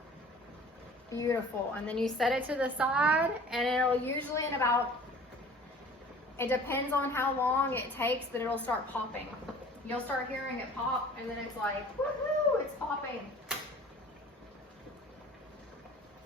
Beautiful. And then you set it to the side, and it'll usually in about, it depends on how long it takes, but it'll start popping. You'll start hearing it pop, and then it's like, woohoo, it's popping.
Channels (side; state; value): both; normal; correlation 0.46